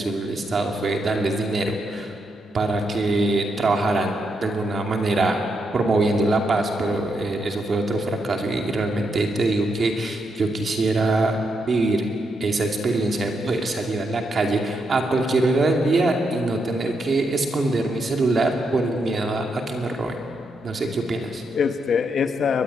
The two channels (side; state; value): both; normal; correlation 0.81